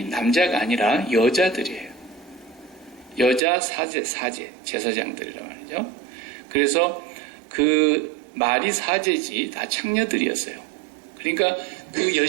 남자가 아니라 여자들이에요. 여자 사제 제사장들이란 말이죠. 그래서 그 말이 사제지 다 창녀들이었어요. 그러니까 그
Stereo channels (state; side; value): drops out; left; at 3.4 s